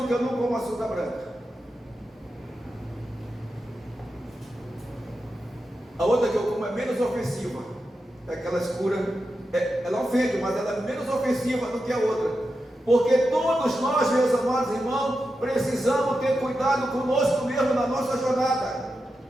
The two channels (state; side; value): normal; both; correlation 0.89